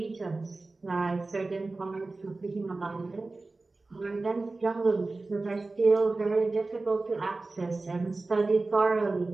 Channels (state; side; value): quieter; left; 3.4 dB